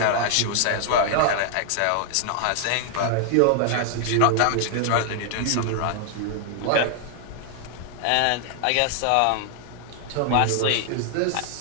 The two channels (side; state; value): both; different; correlation 0.00